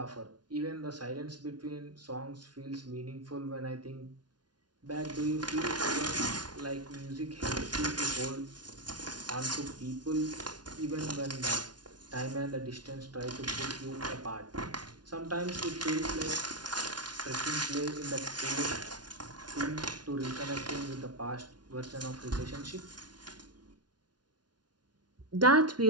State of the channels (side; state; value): left; late; 0.70 ms